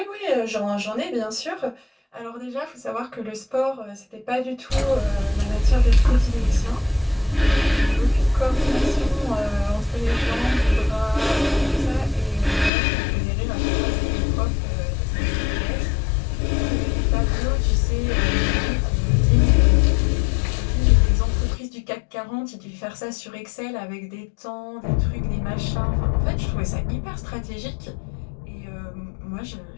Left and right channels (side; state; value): right; drops out; at 12.7 s